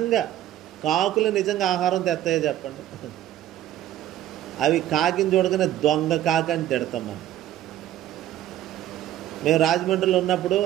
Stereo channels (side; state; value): left; quieter; 12.7 dB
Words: కాకులు నిజంగా ఆహారం తెస్తాయో చెప్పండి? అవి కాకిని చూడగానే దొంగ కాకి అని తిడతాం మనం. మేము రాజమండ్రిలో ఉన్నప్పుడు